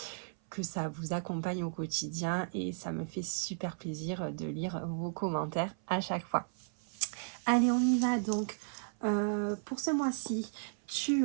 ça vous accompagne au quotidien et ça me fait super plaisir de lire vos commentaires à chaque fois. Allez, on y va donc. Pour ce mois-ci, tu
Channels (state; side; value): silent; left; 55 dB below the other